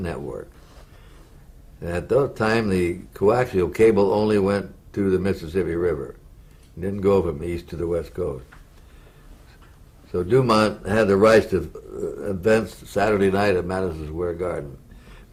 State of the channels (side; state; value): both; identical; correlation 1.00